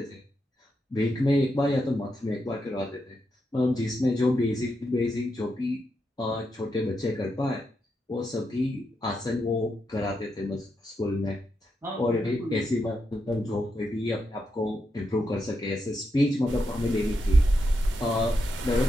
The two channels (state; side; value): normal; both; correlation 0.84